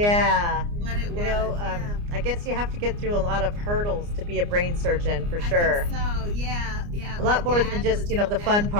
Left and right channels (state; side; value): late; left; 29 ms